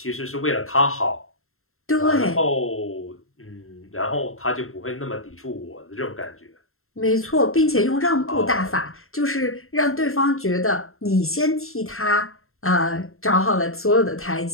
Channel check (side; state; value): right; late; 0.62 ms